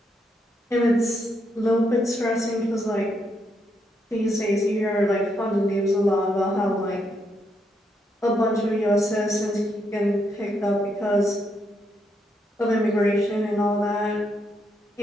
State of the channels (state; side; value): normal; both; correlation 0.78